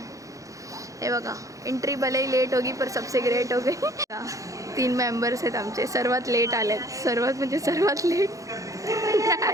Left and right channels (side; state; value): left; late; 0.16 ms